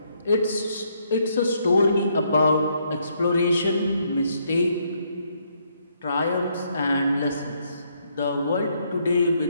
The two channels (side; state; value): both; inverted; correlation -0.73